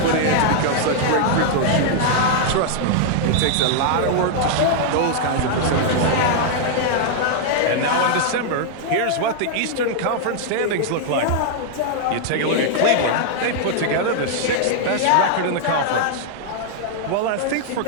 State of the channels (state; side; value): different; both; correlation -0.01